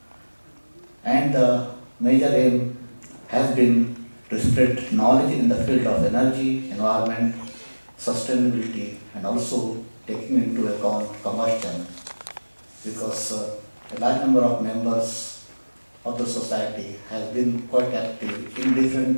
And the major aim has been to spread knowledge in the field of energy, environment, sustainability, and also taking into account combustion, because a large number of members of the society has been quite active in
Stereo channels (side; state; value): both; inverted; correlation -1.00